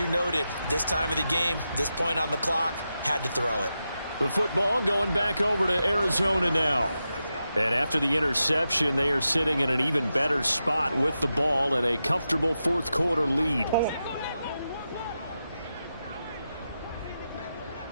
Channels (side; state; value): both; inverted; correlation -0.89